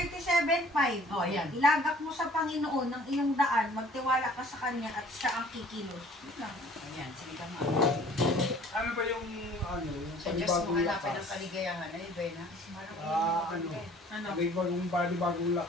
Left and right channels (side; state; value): both; normal; correlation 0.53